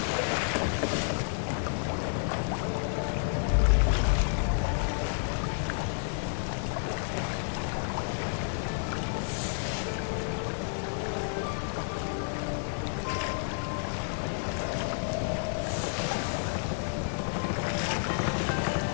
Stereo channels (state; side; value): silent; right; 56 dB below the other